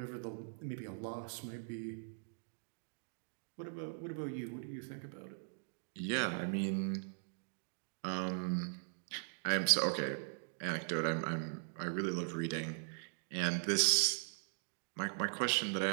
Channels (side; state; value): left; silent; digital silence